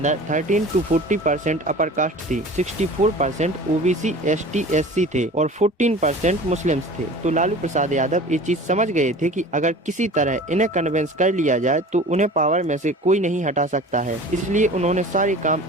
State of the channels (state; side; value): normal; both; correlation 0.40